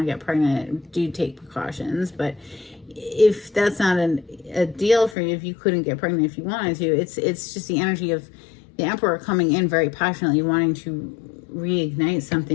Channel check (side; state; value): right; drops out; at 5.2 s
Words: to get pregnant, do take precautions. But if that's not a deal for you, if you couldn't get pregnant if you wanted to, it's just the energy of the Emperor coming in very passionately, wanting to reignite